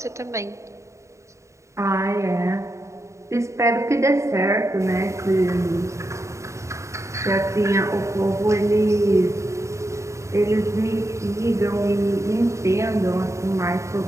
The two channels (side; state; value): left; late; 0.14 ms